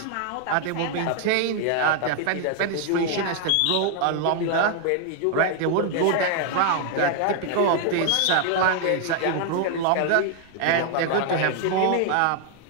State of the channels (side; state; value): both; different; correlation 0.00